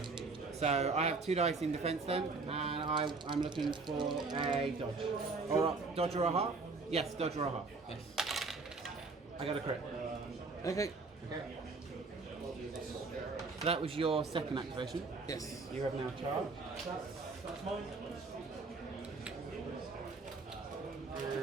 So I have 2 dice in defense then, and I'm looking for a dodge. Or dodge or a half? Yes, dodge or a half. Yes. I got a crit. Okay. Okay. So that was your second activation. Yes. You have now charged.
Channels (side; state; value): left; quieter; 4.0 dB